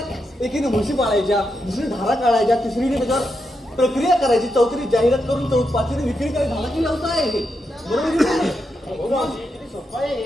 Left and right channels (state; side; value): normal; both; correlation 0.84